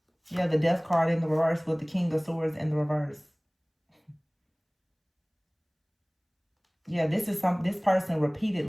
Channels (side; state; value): both; identical; correlation 1.00